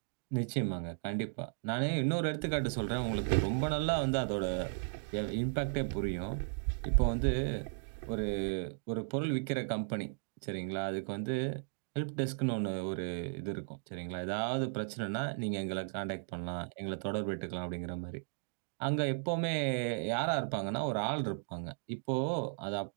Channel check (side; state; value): left; silent; digital silence